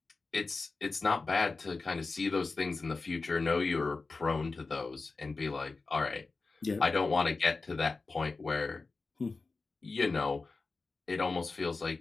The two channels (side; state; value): right; quieter; 3.9 dB